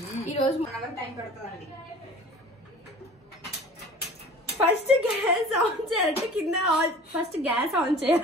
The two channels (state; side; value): normal; both; correlation 0.43